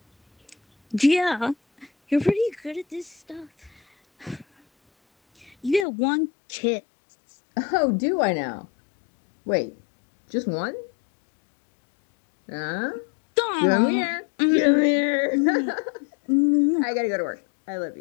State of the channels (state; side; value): drops out; right; at 5.9 s